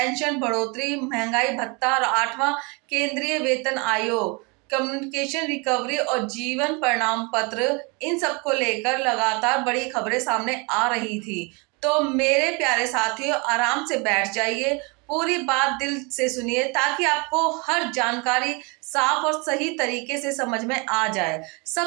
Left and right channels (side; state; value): left; quieter; 30.2 dB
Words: बढ़ोतरी, महंगाई भत्ता और 8वां केंद्रीय वेतन आयोग, कम्युनिकेशन रिकवरी और जीवन प्रमाण पत्र, इन सब को लेकर लगातार बड़ी खबरें सामने आ रही थी। तो मेरे प्यारे साथियों, आराम से बैठ जाइए, पूरी बात दिल से सुनिए ताकि आपको हर जानकारी साफ और सही तरीके से समझ में आ जाए।